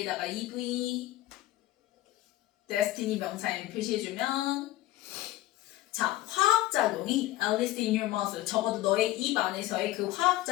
EV destiny 명사에 표시해주면 자 화학작용이 Alice in your mouth 적어도 너의 입 안에서의 그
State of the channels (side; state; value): right; quieter; 16.3 dB